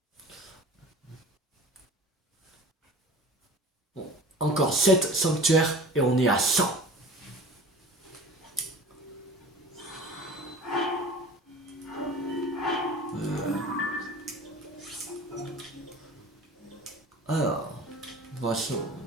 Bon, encore 7 sanctuaires et on est à 100. Alors, on va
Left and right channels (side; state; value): both; normal; correlation 0.40